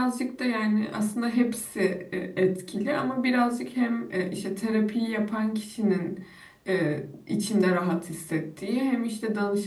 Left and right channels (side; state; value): both; identical; correlation 1.00